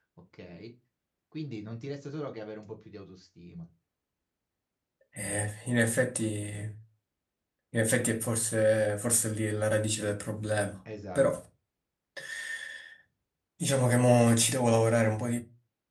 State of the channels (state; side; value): identical; both; correlation 1.00